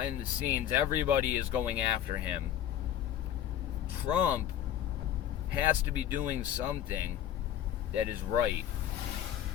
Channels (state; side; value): quieter; right; 10.8 dB